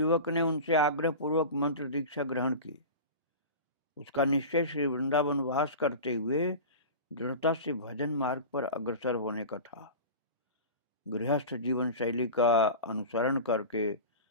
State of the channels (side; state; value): both; inverted; correlation -0.31